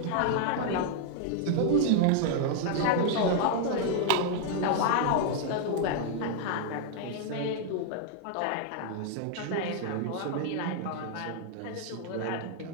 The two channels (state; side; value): different; both; correlation -0.01